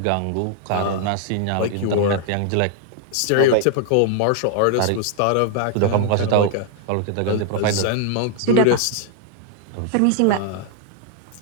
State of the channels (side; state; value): both; different; correlation 0.00